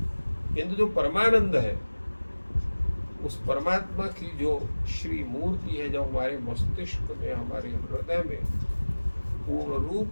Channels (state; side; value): inverted; both; correlation -1.00